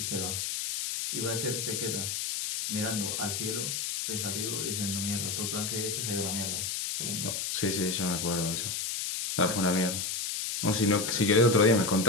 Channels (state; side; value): noise; left; hiss, 2 dB below the sound